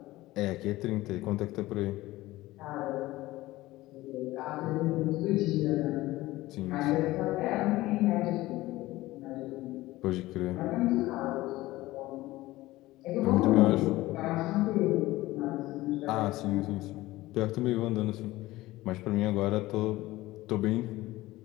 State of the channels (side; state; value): right; quieter; 17.9 dB